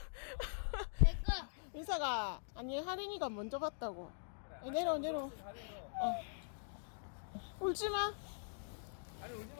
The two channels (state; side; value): silent; right; digital silence